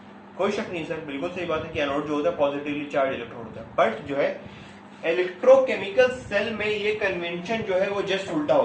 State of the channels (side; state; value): both; identical; correlation 1.00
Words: कोई शक नहीं सर, बिल्कुल सही बात है कि एनोड जो होता है पॉजिटिवली चार्ज इलेक्ट्रोड होता है। बट जो है इलेक्ट्रोकेमिकल सेल में ये कन्वेंशन जो है वो जस्ट उल्टा